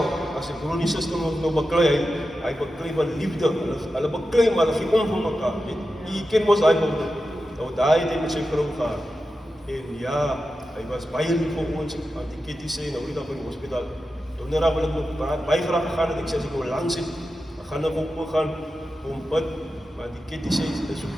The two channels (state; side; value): normal; both; correlation 0.91